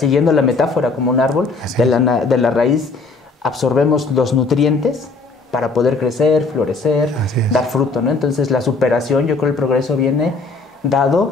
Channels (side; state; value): right; quieter; 3.9 dB